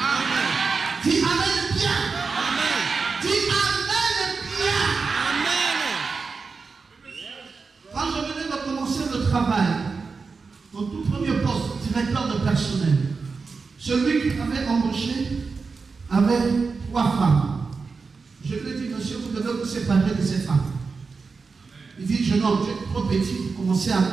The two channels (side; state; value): left; quieter; 4.7 dB